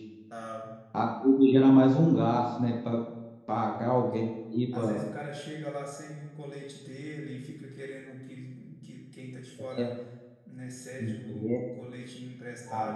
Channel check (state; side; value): identical; both; correlation 1.00